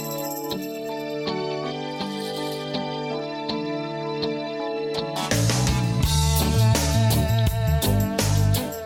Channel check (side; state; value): both; identical; correlation 1.00